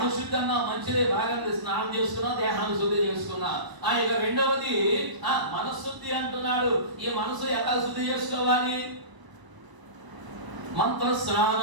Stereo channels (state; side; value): late; left; 1.0 ms